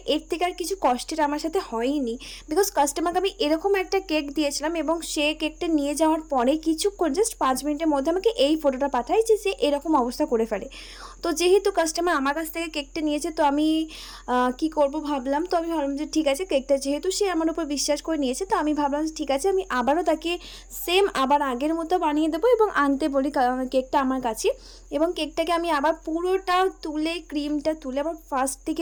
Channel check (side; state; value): both; identical; correlation 1.00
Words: এর থেকে আর কিছু কষ্টের আমার সাথে হয়নি। বিকজ কাস্টমারকে আমি এরকম একটা কেক দিয়েছিলাম এবং সে কেকটা নিয়ে যাওয়ার পরে কিছুক্ষণ, জাস্ট 5 মিনিটের মধ্যে আমাকে এই ফটোটা পাঠায় যে সে এরকম অবস্থা করে ফেলে। তো যেহেতু কাস্টমার আমার কাছ থেকে কেকটা নিয়েছে, তো আমি কি করব ভাবলাম। তো আমি ভাবলাম যে ঠিক আছে, কেকটা যেহেতু সে আমার উপর বিশ্বাস করে নিয়েছে, তো আমি ভাবলাম যে ঠিক আছে, আমি আবারও তাকে সেম আবার আগের মতো বানিয়ে দেবো এবং আনতে বলি কেকটা আমার কাছে। এবং কেকটাকে আমি আবার পুরোটা তুলে, ক্রিমটা তুলে আবার ফার্স্ট